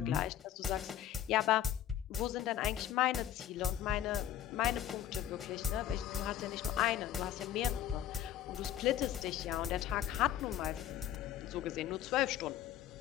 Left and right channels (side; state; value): right; quieter; 11.1 dB